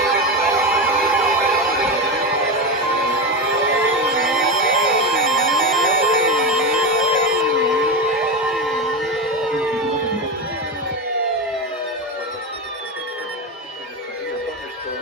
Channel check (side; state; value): both; normal; correlation 0.17